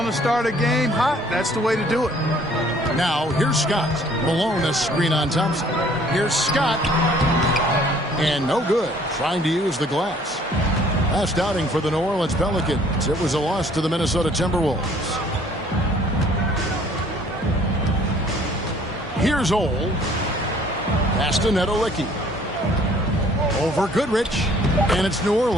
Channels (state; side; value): normal; both; correlation 0.58